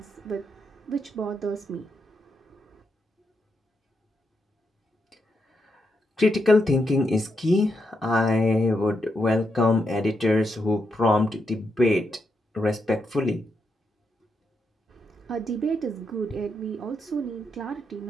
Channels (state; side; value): normal; both; correlation 0.82